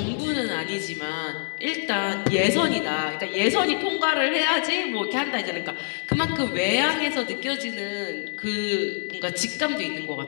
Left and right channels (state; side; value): quieter; right; 35.7 dB